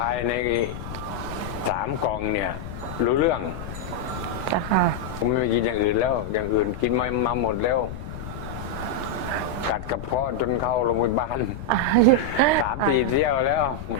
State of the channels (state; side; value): noise; left; rumble, 10 dB below the sound